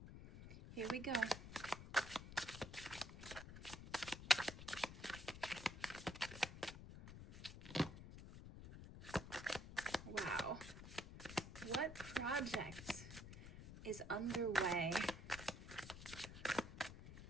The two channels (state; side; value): noise; left; rumble, 11 dB below the sound